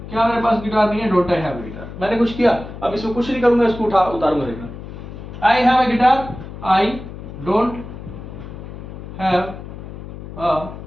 क्या मेरे पास गिटार नहीं है? Don't I have a guitar. मैंने कुछ किया, अब इसमें कुछ नहीं करूंगा, इसको उतारूंगा। देखना, I have a guitar, I don't have a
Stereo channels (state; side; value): noise; left; hum, 12 dB below the sound